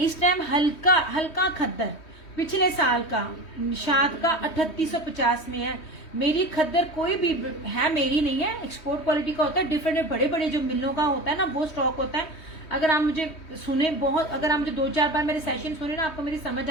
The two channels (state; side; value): late; right; 3.2 ms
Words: टाइम हल्का हल्का खद्दर, पिछले साल का निशात का 3850 में है। मेरी खद्दर कोई भी है, मेरी नहीं है, एक्सपोर्ट क्वालिटी का होता है। डिफरेंट बड़े बड़े जो मिलों का होता है ना, वो स्टॉक होता है। अगर आप मुझे सुने बहुत, अगर आप मुझे 2-4 बार मेरे सेशन सुने ना, आपको मेरी समझ